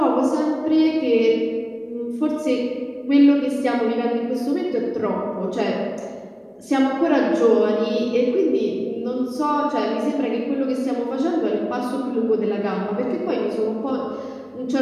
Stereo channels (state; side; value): identical; both; correlation 1.00